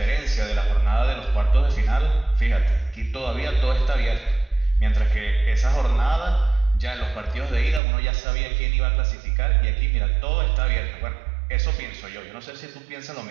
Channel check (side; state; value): left; drops out; at 7.8 s